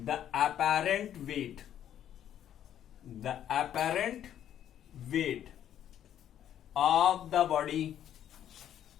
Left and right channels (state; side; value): quieter; right; 10.5 dB